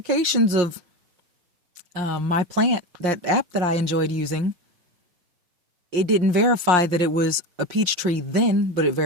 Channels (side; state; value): left; late; 5.6 ms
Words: of my plant, that app that I enjoyed using, it didn't verify that it was a peach tree then, but it